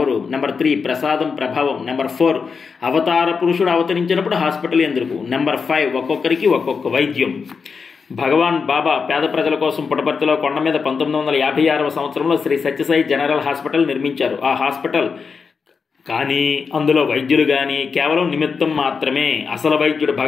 నెంబర్ 3, ప్రసాదం ప్రభావం. నెంబర్ 4, అవతార పురుషుడు అవతరించినప్పుడు హాస్పిటల్ ఎందుకు. నెంబర్ 5, ఒక్కొక్కరికి ఒక్కొక్క వైద్యం. భగవాన్ బాబా పేద ప్రజల కోసం పుట్టపర్తిలో కొండ మీద 1956వ సంవత్సరంలో శ్రీ సత్యసాయి జనరల్ హాస్పిటల్ నిర్మించారు. ఆ హాస్పిటల్ కానీ అందులో వైద్యులు కానీ కేవలం నిమిత్తం మాత్రమే. అసలు వైద్యుడు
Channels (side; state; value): right; quieter; 5.4 dB